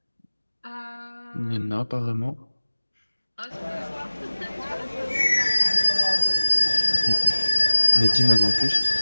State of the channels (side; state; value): both; inverted; correlation -1.00